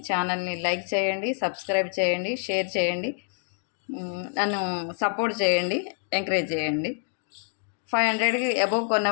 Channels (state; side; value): silent; right; 58 dB below the other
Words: ఛానల్ని లైక్ చేయండి, సబ్స్క్రైబ్ చేయండి, షేర్ చేయండి, నన్ను సపోర్ట్ చేయండి, ఎంకరేజ్ చేయండి. 500కి అబోవ్ కొన్న